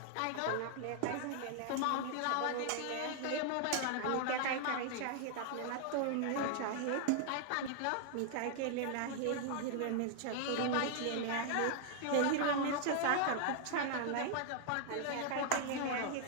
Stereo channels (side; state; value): both; different; correlation -0.01